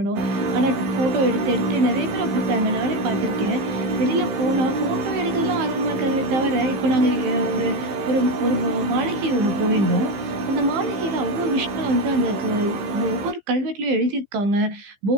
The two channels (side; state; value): left; late; 15 ms